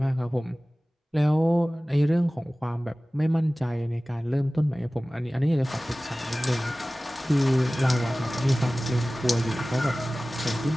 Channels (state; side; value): normal; both; correlation 0.98